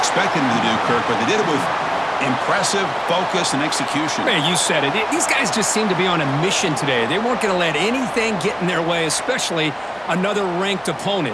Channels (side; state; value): both; identical; correlation 1.00